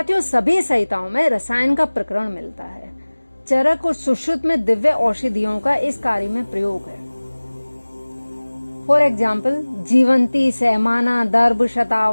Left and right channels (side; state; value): both; inverted; correlation -1.00